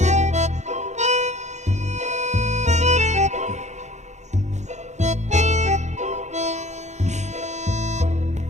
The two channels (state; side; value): late; left; 0.34 ms